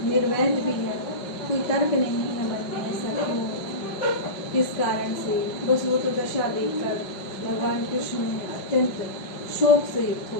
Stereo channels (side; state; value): right; late; 5.5 ms